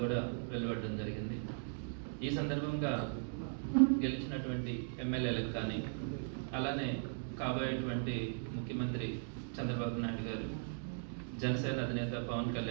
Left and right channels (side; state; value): left; silent; digital silence